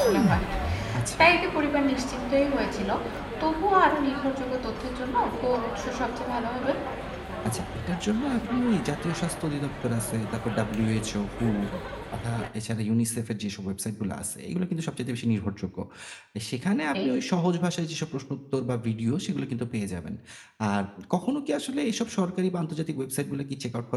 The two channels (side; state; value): both; identical; correlation 1.00